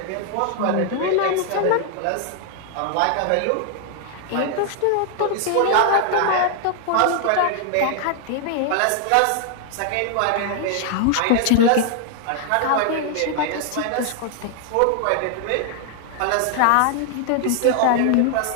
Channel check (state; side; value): different; both; correlation 0.00